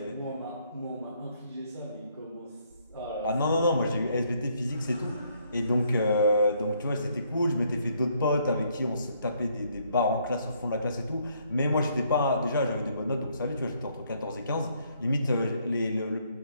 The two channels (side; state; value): both; inverted; correlation -0.69